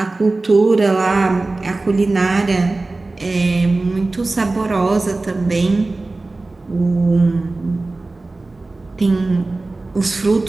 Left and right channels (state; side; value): quieter; left; 3.2 dB